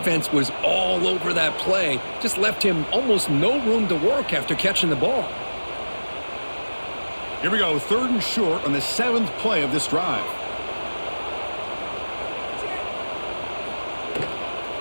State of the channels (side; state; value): both; inverted; correlation -1.00